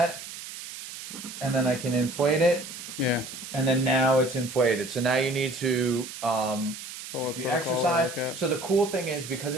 and then I can inflate it. Yeah. And then now it's inflated. So now you need to exercise. So the cool thing is, because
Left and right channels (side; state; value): right; noise; hiss, 11 dB below the sound